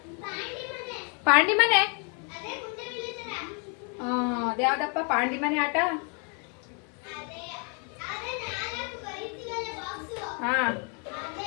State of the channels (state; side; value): quieter; right; 37.2 dB